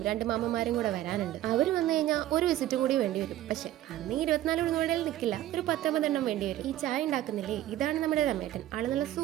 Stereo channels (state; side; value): quieter; left; 13.7 dB